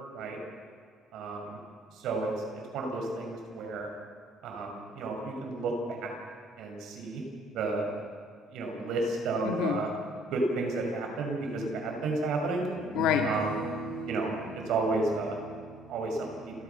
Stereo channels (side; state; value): both; normal; correlation 0.60